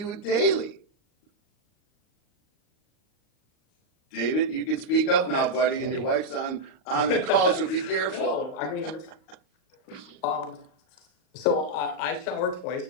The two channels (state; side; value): late; right; 38 ms